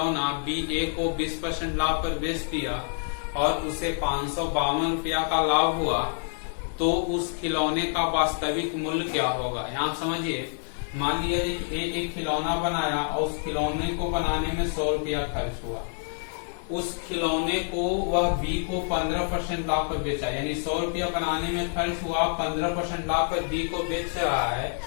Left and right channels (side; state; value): right; silent; 60 dB below the other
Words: बी ए को 20% लाभ पर बेच दिया और उसे 552 रुपया का लाभ हुआ, तो उस खिलौने का वास्तविक मूल्य क्या होगा। यहाँ समझिए, मान लीजिए ए एक खिलौना बनाया और उस खिलौने को बनाने में 100 रुपया खर्च हुआ। उस खिलौने को वह बी को 15% लाभ पर बेचा, यानी 100 रुपया बनाने में खर्च हुआ, 15% लाभ पर बी को बेच रहा है,